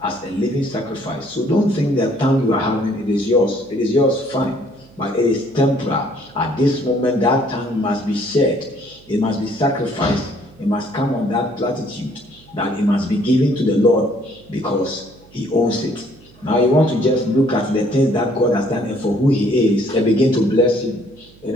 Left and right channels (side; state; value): right; noise; hum, 26 dB below the sound